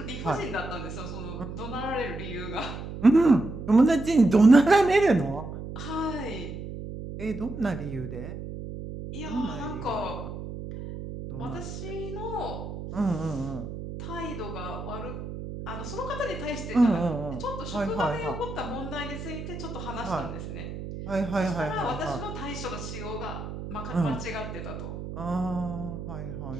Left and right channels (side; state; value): right; noise; hum, 8 dB below the sound